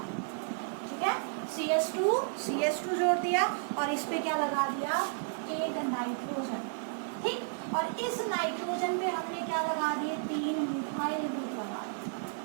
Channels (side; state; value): left; silent; digital silence